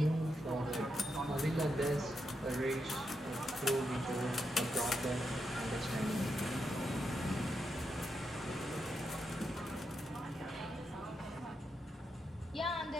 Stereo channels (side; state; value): both; normal; correlation 0.84